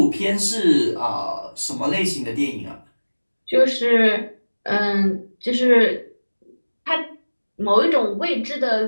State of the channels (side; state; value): both; inverted; correlation -1.00